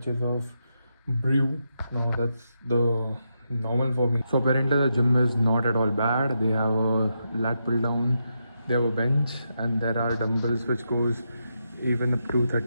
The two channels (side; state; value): both; inverted; correlation -0.84